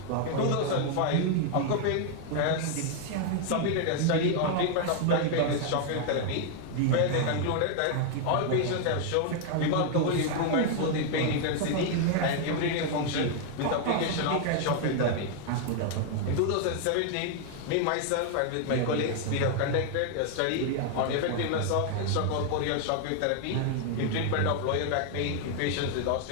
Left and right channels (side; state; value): both; different; correlation 0.00